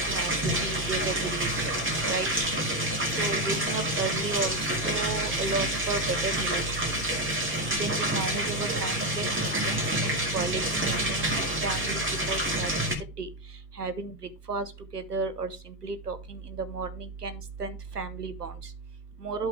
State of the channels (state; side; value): normal; both; correlation 0.09